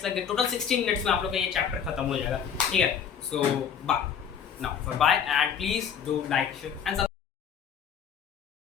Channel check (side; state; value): right; quieter; 7.7 dB